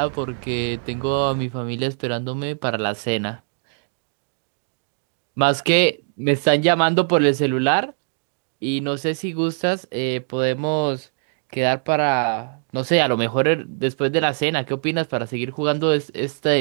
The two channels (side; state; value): left; silent; digital silence